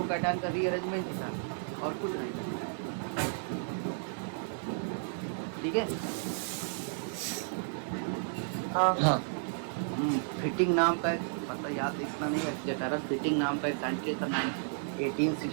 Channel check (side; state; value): left; silent; digital silence